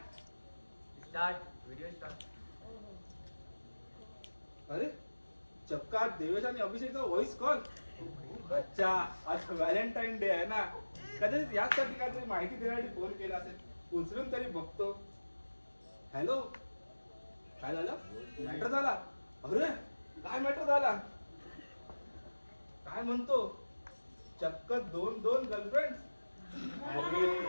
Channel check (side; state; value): both; inverted; correlation -1.00